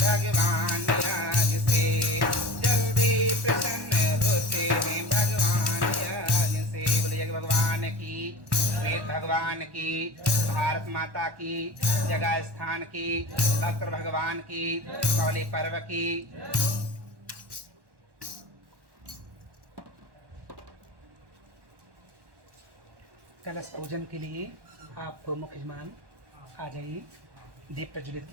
यज्ञ से, जल्दी प्रसन्न होते हैं भगवान यज्ञ से। बोले यज्ञ भगवान की, वेद भगवान की, भारत माता की, जगह स्थान की, भक्त भगवान की, कौली पर्व की। कलश पूजन के लिए आप मुख्य यजमान आ जाइए, दीप प्रज्वलित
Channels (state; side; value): late; left; 1.1 ms